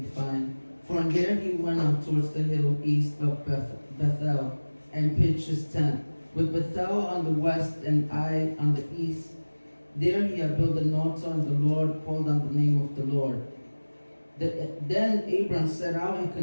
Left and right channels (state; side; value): inverted; both; correlation -1.00